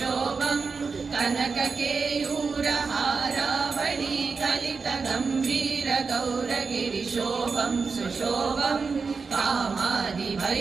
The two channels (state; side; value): quieter; left; 4.9 dB